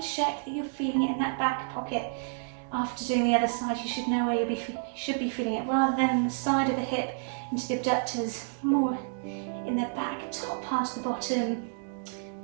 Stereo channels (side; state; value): left; silent; digital silence